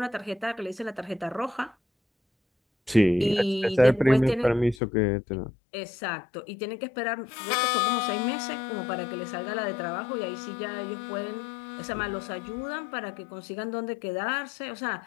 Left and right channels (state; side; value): drops out; right; at 4.8 s